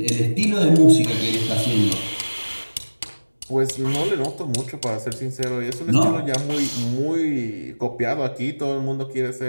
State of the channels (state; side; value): inverted; both; correlation -1.00